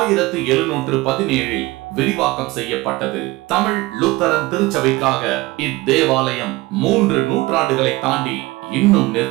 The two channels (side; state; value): left; quieter; 20.8 dB